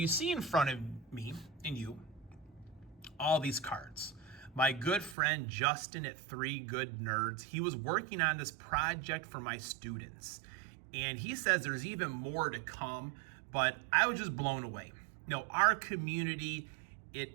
see in front of me and you all these cards. My good friend Justin at 3 Good Nerds, he was working on this project for my students. And he says there's even more to come, but I was just blown away. Our community,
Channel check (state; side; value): drops out; left; at 5.2 s